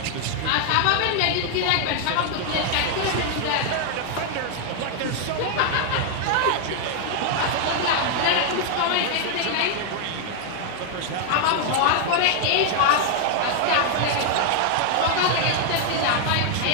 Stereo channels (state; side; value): different; both; correlation 0.00